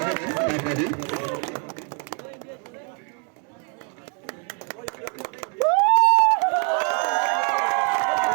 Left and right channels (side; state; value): left; quieter; 37.2 dB